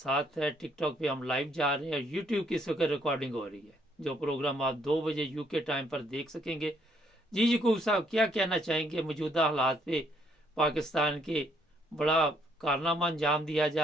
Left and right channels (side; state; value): both; normal; correlation 0.69